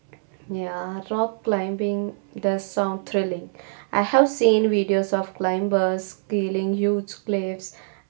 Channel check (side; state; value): left; silent; digital silence